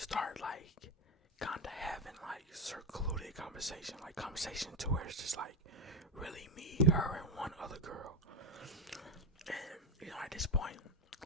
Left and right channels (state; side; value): normal; both; correlation 0.13